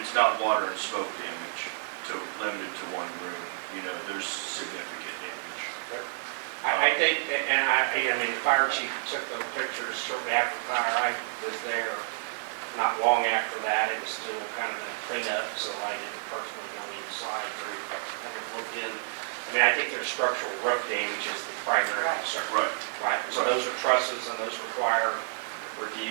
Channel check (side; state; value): left; silent; digital silence